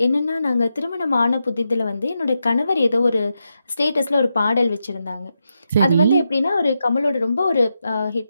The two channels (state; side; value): inverted; both; correlation -0.86